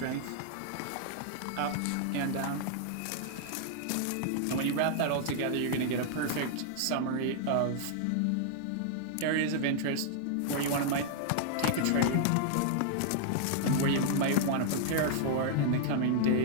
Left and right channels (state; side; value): different; both; correlation -0.01